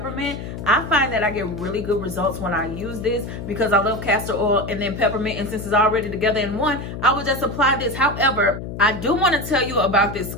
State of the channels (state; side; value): noise; left; hum, 8 dB below the sound